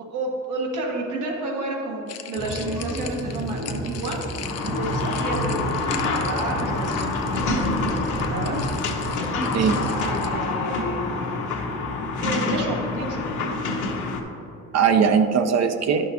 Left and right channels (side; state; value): both; normal; correlation 0.22